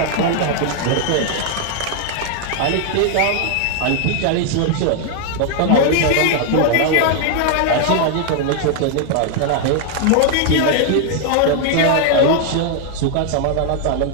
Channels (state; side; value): different; both; correlation 0.00